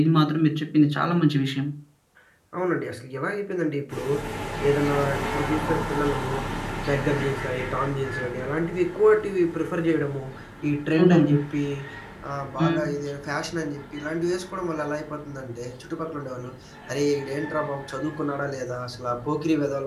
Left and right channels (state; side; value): identical; both; correlation 1.00